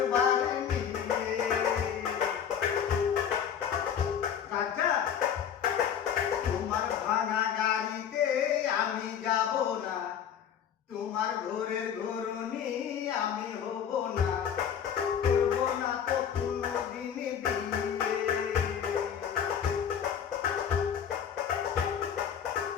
বাড়ি নিয়ে। রাজা তোমার ভাঙা গাড়িতে আমি যাব না, তোমার ঘরের ঘরনি আমি হব না, করব না তো কোনোদিন বিয়ে।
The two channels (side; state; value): right; quieter; 8.4 dB